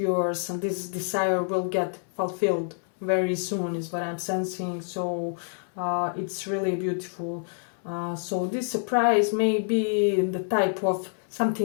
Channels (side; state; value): right; silent; 60 dB below the other